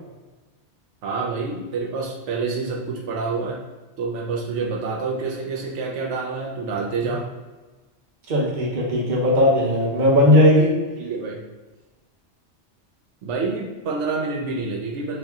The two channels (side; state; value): both; normal; correlation -0.04